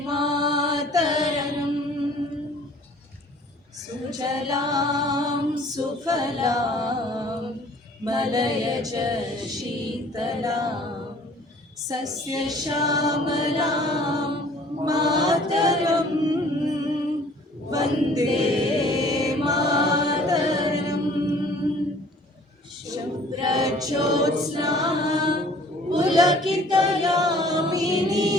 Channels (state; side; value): normal; both; correlation 0.53